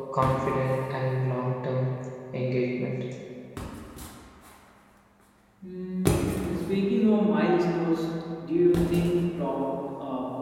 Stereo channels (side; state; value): both; identical; correlation 1.00